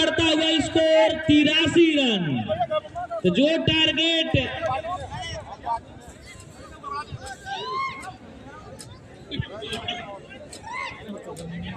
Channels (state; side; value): identical; both; correlation 1.00